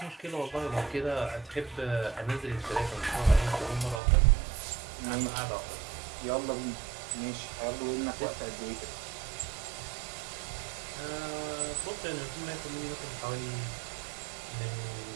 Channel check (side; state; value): left; drops out; at 4.0 s